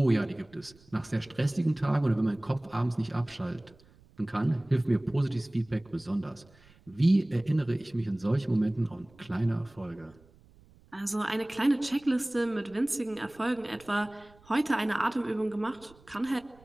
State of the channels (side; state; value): right; noise; rumble, 27 dB below the sound